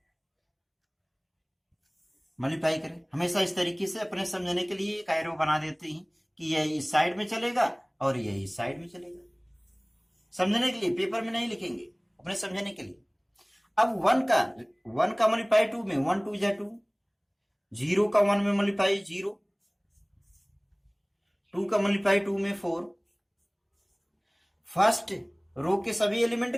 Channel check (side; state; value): both; identical; correlation 1.00